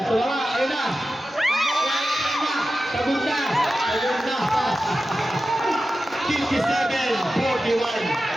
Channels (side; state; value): both; normal; correlation 0.93